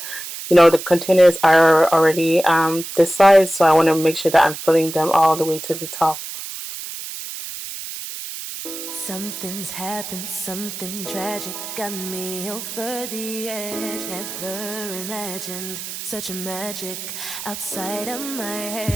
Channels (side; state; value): right; noise; hiss, 9 dB below the sound